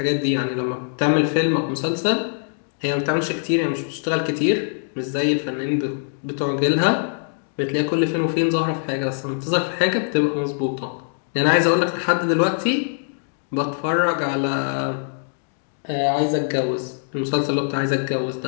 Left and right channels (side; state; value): right; silent; digital silence